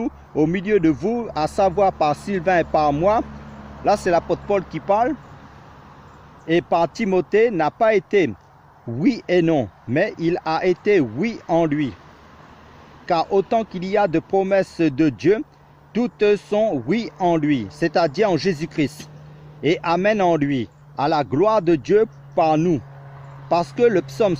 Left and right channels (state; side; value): identical; both; correlation 1.00